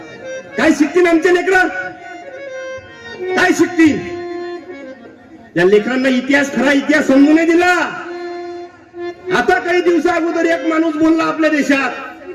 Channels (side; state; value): both; identical; correlation 1.00